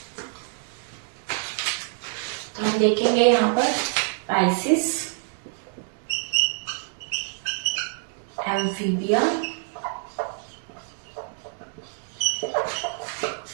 देखेंगे यहाँ पर Pisces, amphibia,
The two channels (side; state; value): left; silent; 57 dB below the other